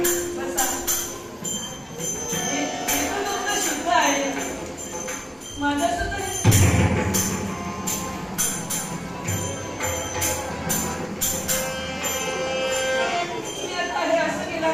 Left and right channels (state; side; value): identical; both; correlation 1.00